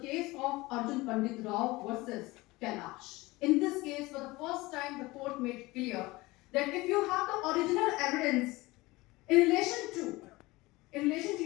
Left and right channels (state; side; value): quieter; right; 21.1 dB